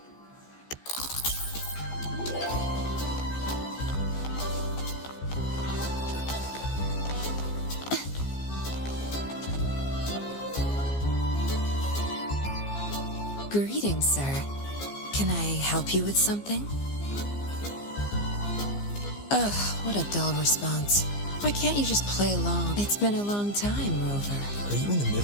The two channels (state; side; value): late; right; 15 ms